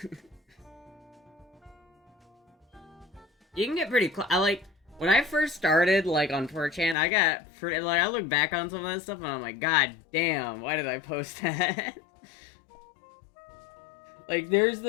You can get pretty close. When I first started, like, on 4chan, I got pretty, like, I look back on some of that stuff and I'm like, god damn, why did I post that? Like, there's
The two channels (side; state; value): right; drops out; at 7.0 s